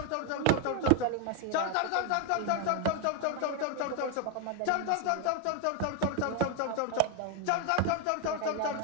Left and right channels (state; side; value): different; both; correlation 0.01